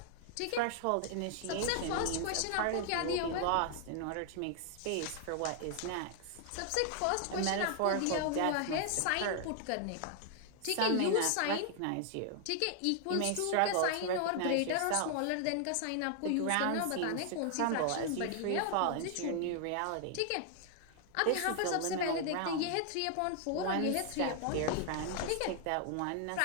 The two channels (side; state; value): both; different; correlation 0.00